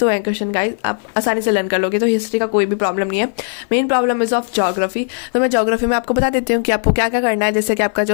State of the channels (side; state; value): right; silent; 58 dB below the other